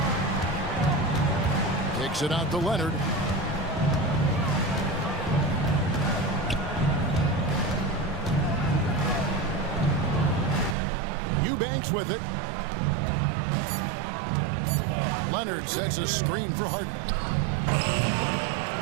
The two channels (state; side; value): drops out; left; at 10.8 s